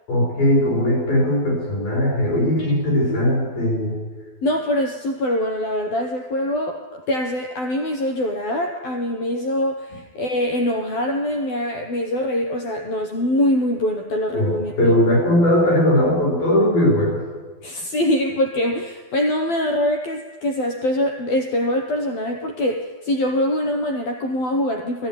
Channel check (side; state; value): right; late; 12 ms